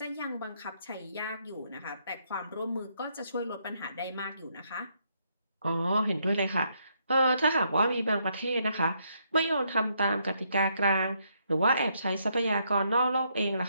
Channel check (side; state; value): both; inverted; correlation -0.74